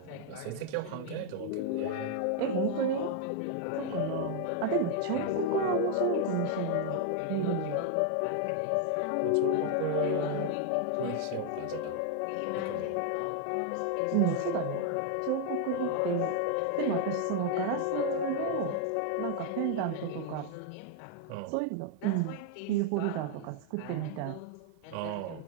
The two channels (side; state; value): both; different; correlation 0.00